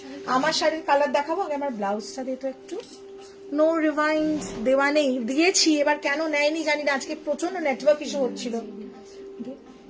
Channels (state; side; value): identical; both; correlation 1.00